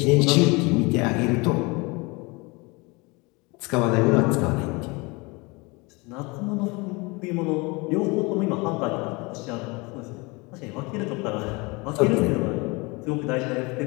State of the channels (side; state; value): right; quieter; 26.3 dB